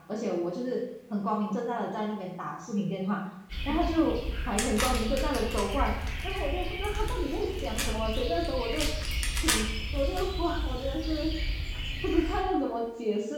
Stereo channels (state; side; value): identical; both; correlation 1.00